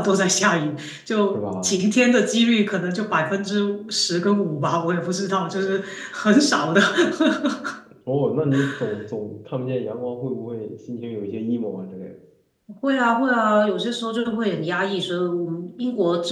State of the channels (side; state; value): both; identical; correlation 1.00